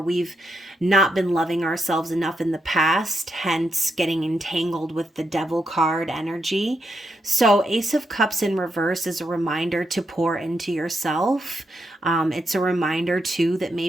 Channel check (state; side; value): normal; both; correlation 0.82